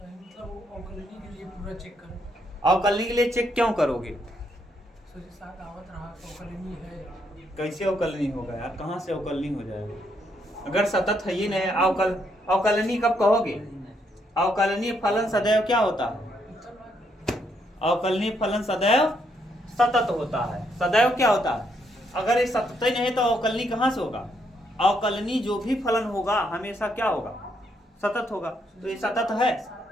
के लिए पूरा चेक करो। अवकलनीय के लिए चेक क्यों करोगे? कैसे अवकलनीय होगा यार? कहाँ से अवकलनीय हो जाएगा? अगर सतत है ही नहीं, अवकलनीय कब कहोगे? अवकलनीय फलन सदैव क्या होता है? अवकलनीय फलन सदैव सतत होता है। सदैव क्या होता है? अगर ये सतत ही नहीं तो अवकलनीय कहाँ से होगा? अवकलनीय जो भी फलन होगा हमेशा क्या होगा? सतत होगा। तो ये सतत है?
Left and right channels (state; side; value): normal; both; correlation 0.75